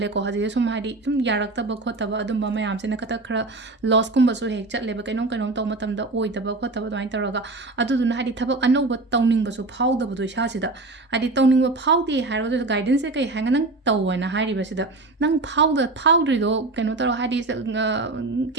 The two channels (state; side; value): quieter; left; 3.1 dB